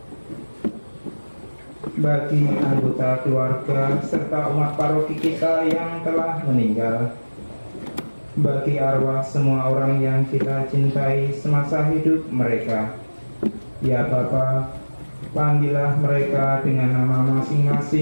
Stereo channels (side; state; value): both; inverted; correlation -1.00